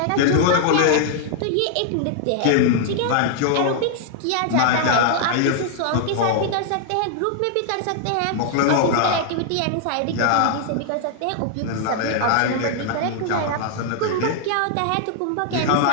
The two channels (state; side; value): different; both; correlation -0.01